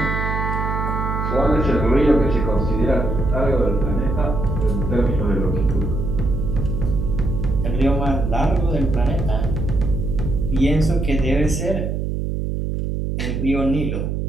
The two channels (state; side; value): noise; right; hum, 2 dB below the sound